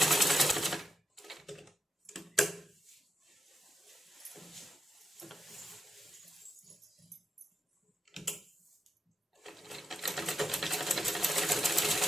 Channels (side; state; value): both; normal; correlation 0.81